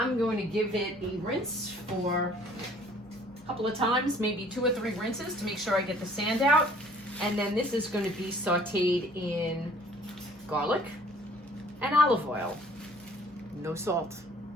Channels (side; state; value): both; normal; correlation 0.55